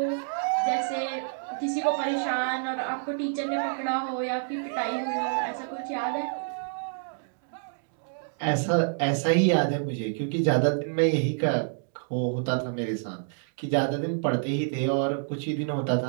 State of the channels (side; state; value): left; silent; digital silence